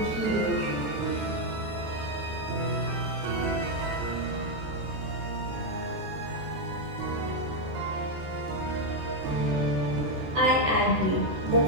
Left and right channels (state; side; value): late; left; 14 ms